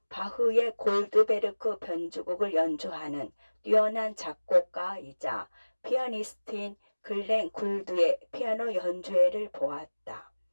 바흐의 골드베르크 변주곡을 연주하는 뛰어난 작곡가이자 피아니스트인 글렌 굴드의 피아노 연주회를 보았다.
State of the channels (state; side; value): inverted; both; correlation -1.00